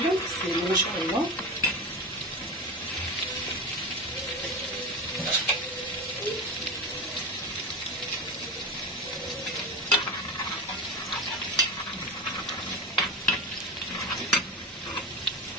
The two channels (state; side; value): normal; both; correlation 0.24